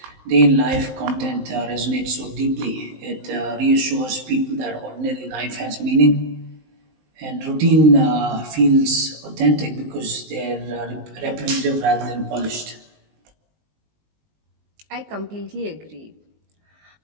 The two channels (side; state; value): left; late; 19 ms